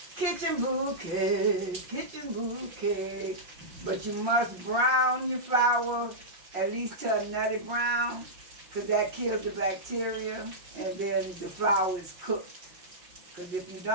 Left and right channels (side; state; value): left; late; 5.6 ms